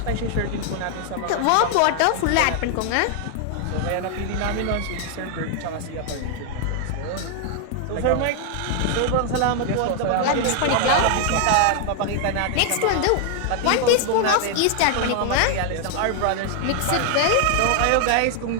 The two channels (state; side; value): different; both; correlation 0.00